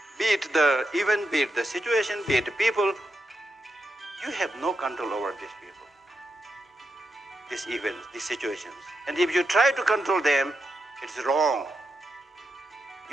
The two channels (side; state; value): both; normal; correlation 0.86